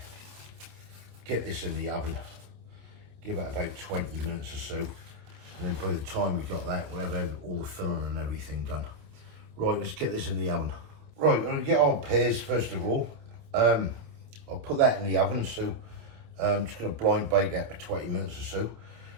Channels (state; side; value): late; left; 27 ms